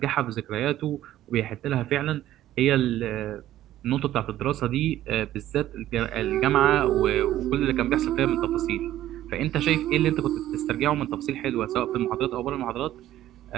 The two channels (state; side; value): quieter; left; 13.4 dB